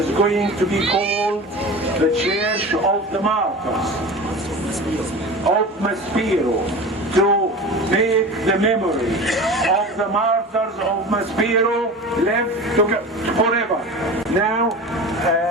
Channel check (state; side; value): normal; both; correlation 0.33